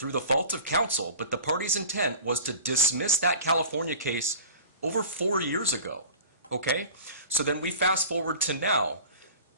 the fault of counsel, but the party's intent was to dismiss that California case over 4 years ago. Okay? So then we fast forward to now.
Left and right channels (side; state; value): both; inverted; correlation -0.39